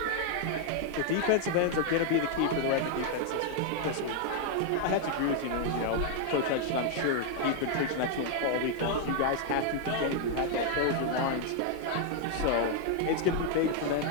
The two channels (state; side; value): different; both; correlation 0.00